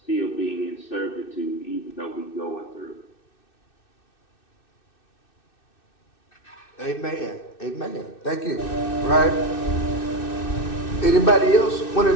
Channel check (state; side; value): late; right; 2.6 ms